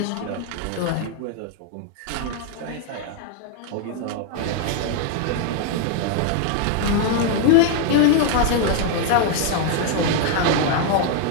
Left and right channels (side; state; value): both; different; correlation 0.00